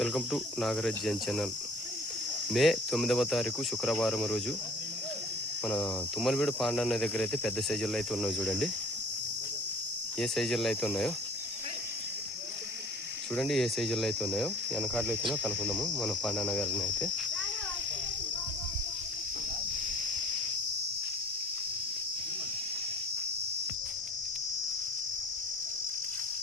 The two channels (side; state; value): both; normal; correlation 0.48